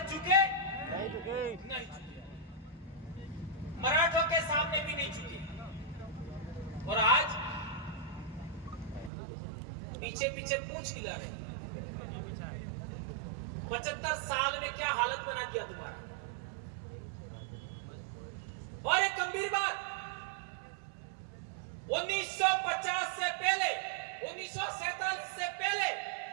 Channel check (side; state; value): left; drops out; at 9.1 s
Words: झुके? नहीं झुके। नहीं झुके। मराठों के सामने भी नहीं झुके। और आज पीछे पीछे पूछ हिला रहे। 75 साल में क्या हालत बना दिया तुम्हारा। और एक गंभीर बात, 1950 से पहले, 1947 से पहले